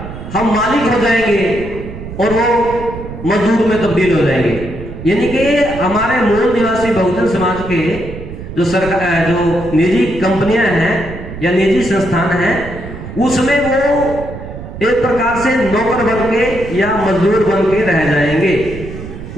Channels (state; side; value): noise; right; rumble, 11 dB below the sound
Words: हम मालिक हो जाएंगे और वो मजदूर में तब्दील हो जाएंगे। यानी कि हमारे मूल निवासी बहुजन समाज के जो निजी कंपनियां हैं या निजी संस्थान हैं, उसमें वो एक प्रकार से नौकर बन के या मजदूर बन के रह जाएंगे।